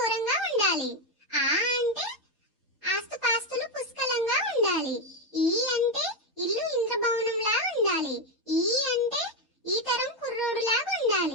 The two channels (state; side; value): normal; both; correlation 0.06